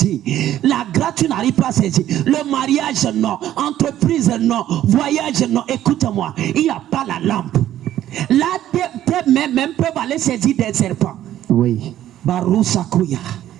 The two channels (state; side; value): quieter; left; 12.4 dB